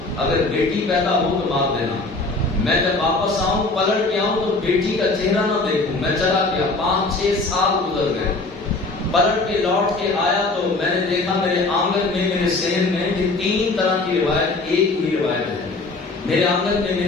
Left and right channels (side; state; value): right; quieter; 3.3 dB